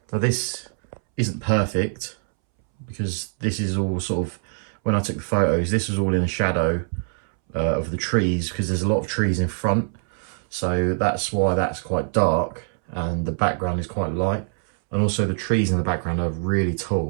So this isn't perfect, because this is all sort of, when I took the photos, this was all in the shadow of the trees, because there's a lot of trees in front. So that's why that's quite dark and the background is quite light. And also the trees in the background are really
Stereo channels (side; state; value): left; silent; 63 dB below the other